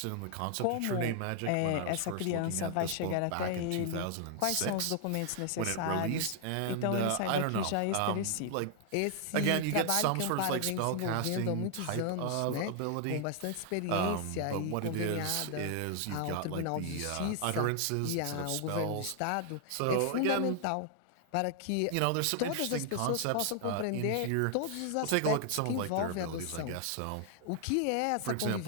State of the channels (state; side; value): different; both; correlation 0.00